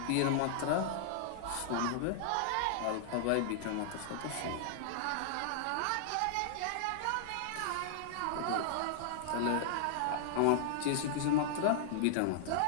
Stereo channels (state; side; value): different; both; correlation -0.01